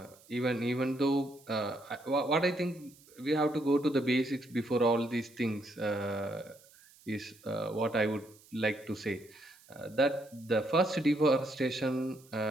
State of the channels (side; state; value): right; noise; hiss, 26 dB below the sound